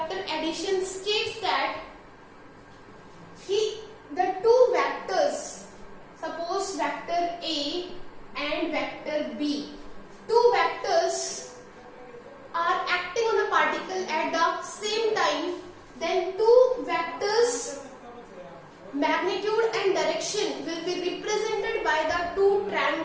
addition states that the two vectors, suppose vector A and vector B, two vectors are acting on a particle at the same time, then two vectors magnitude and direction will be represented by the two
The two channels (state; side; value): identical; both; correlation 1.00